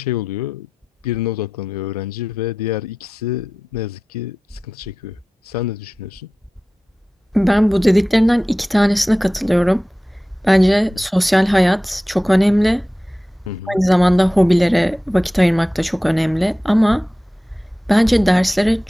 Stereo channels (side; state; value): both; normal; correlation 0.95